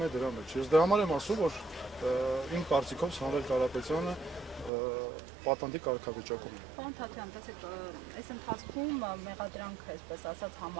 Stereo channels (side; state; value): left; drops out; at 4.7 s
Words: է դրա մեջ։ Ես դրա համար եմ ասում, որ իմ կարծիքով Սամվել Կարապետյանը պատանդի կարգավիճակում է։ Պարոն Թաթյան, տեսեք, այս ընթացքում մեղադրանքը, այսպես ասած,